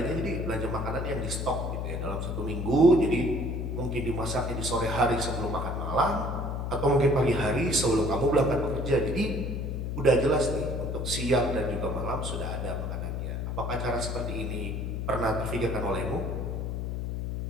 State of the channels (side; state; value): left; noise; hum, 3 dB below the sound